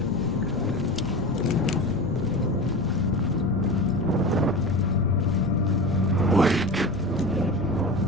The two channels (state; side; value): noise; left; rumble, 13 dB below the sound